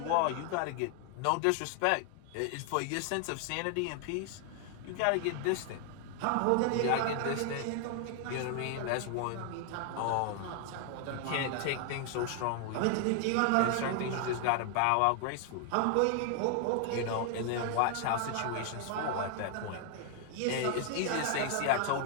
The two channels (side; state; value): both; different; correlation 0.00